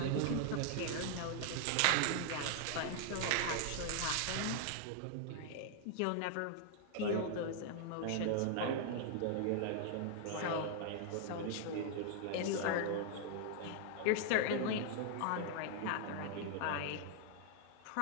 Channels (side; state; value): both; different; correlation 0.00